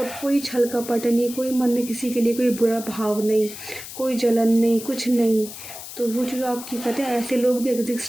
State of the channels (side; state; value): left; noise; hiss, 12 dB below the sound